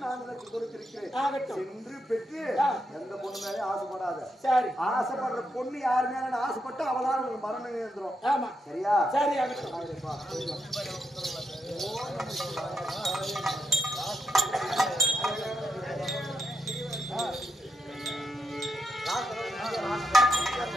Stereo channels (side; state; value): both; normal; correlation 0.83